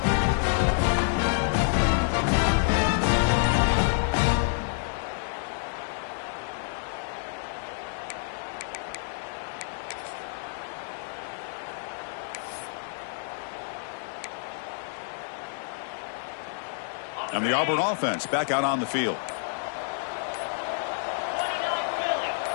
And the Auburn offense back out on the field.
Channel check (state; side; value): silent; right; digital silence